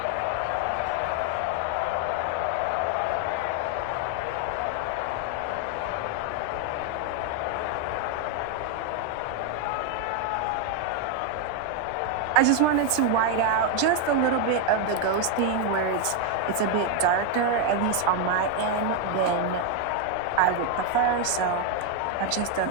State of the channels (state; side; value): different; both; correlation 0.01